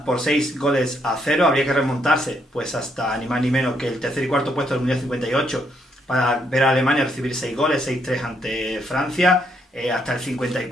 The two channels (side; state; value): both; normal; correlation 0.74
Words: por 6-0. Habría que remontarse pues hasta ni más ni menos que el tercer y cuarto puesto del Mundial 58 para ver a Alemania recibir 6 goles, 6-3 ante Francia, hasta el